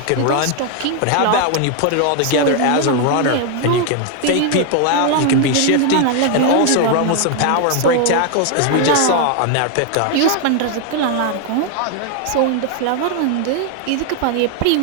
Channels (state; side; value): different; both; correlation 0.00